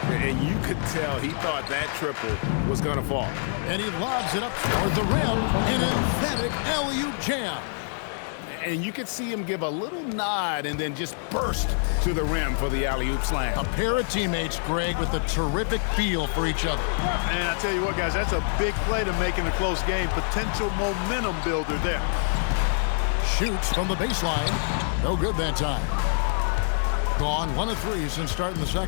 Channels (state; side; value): silent; right; digital silence